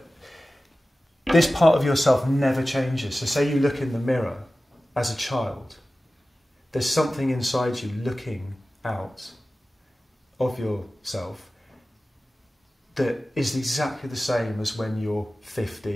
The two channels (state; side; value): normal; both; correlation 0.96